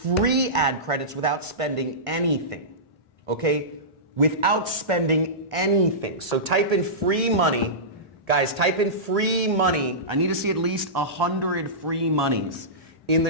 ad credits without spending anything? Okay? Without spending anything. So type in free money. Guys, type in free money. I need to see at least 100 free monies in the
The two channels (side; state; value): both; normal; correlation -0.19